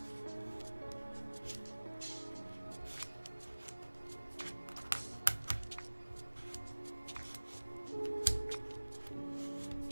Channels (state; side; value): inverted; both; correlation -1.00